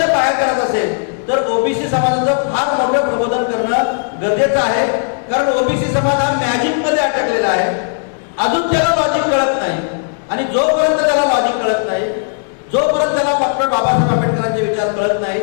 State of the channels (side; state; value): right; silent; digital silence